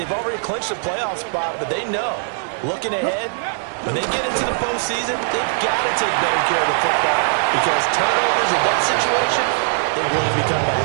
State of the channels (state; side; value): silent; left; digital silence